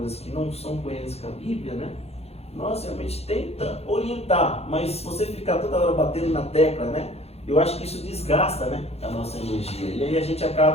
que não são coerentes com a Bíblia, né? Nós realmente tenta orientar, mas se você ficar toda hora batendo na tecla, né? Eu acho que isso desgasta, né, a nossa energia. E aí a gente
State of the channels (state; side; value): late; right; 0.30 ms